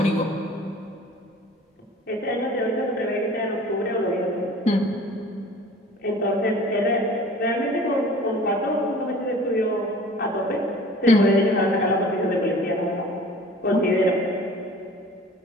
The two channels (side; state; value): both; normal; correlation 0.45